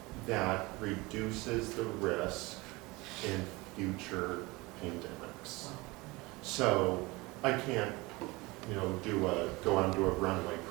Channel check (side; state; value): left; quieter; 23.2 dB